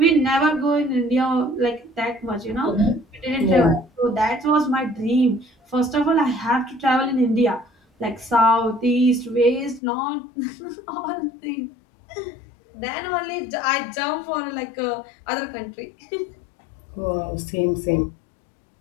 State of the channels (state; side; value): drops out; right; at 9.8 s